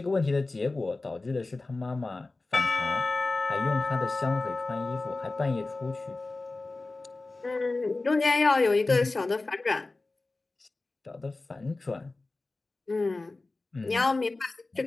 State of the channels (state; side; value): quieter; right; 3.3 dB